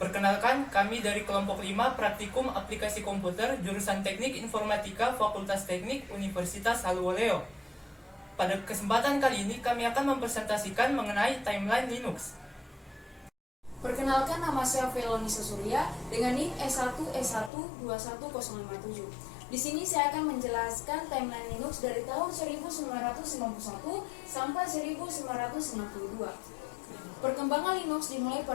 kami dari kelompok 5 Praktikum Aplikasi Komputer jurusan Teknik Informatika Fakultas Teknik Universitas Halluoleo. Pada kesempatan kali ini kami akan mempresentasikan mengenai timeline Linux. Perkenalkan, nama saya Felonisa Surya dengan NIM S1S1211057. Di sini saya akan menjelaskan timeline Linux dari tahun 1991 sampai 1992. Perkembangan Linux dimulai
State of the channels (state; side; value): drops out; right; at 17.5 s